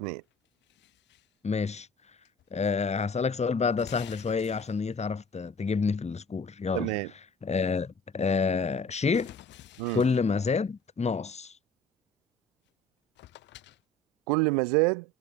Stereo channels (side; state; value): both; normal; correlation 0.45